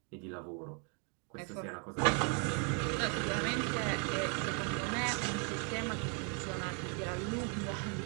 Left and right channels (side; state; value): left; quieter; 37.7 dB